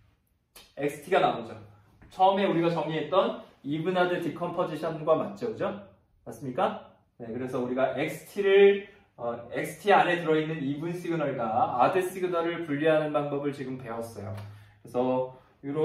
xt가 나오죠. 처음에 우리가 정의했던 even 아들 디컴포지션과 맞죠? 그죠? 맞습니까? 네, 그래서 우리가 XT 안에 들어있는 이분 시그널과 아드 시그널을 분리하는 방법을 지금 배웠어요. 그래서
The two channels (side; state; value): both; identical; correlation 1.00